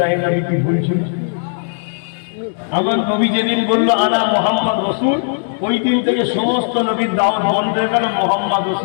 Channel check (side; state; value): right; silent; digital silence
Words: নবী কি বলছেন? আমার নবী যেদিন বললো আনা মুহাম্মদ রাসূল, ওই দিন থেকে সমস্ত নবীর দাওয়াত বন্ধ হয়ে গেল, মুহাম্মদ